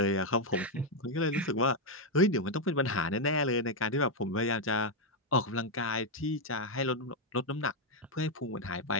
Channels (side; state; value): both; normal; correlation 0.01